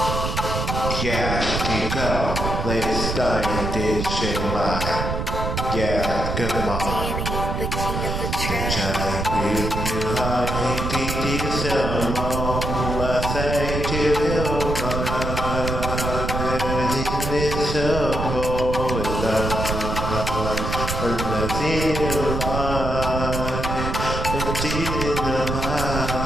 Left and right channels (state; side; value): noise; right; rumble, 2 dB below the sound